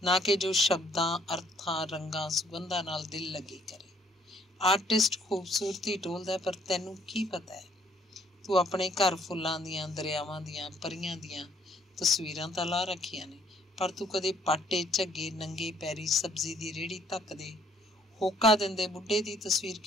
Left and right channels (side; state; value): both; normal; correlation 0.64